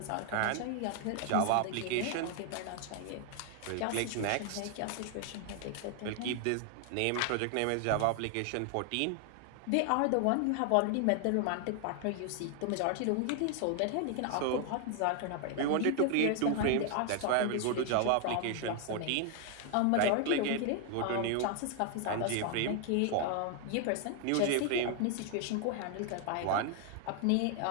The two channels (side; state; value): both; different; correlation 0.00